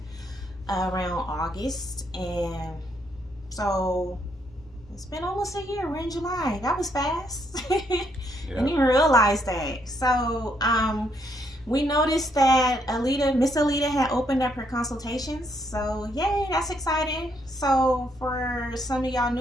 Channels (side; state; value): both; normal; correlation 0.74